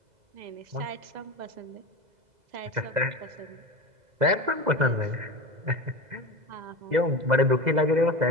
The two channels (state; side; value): late; left; 2.0 ms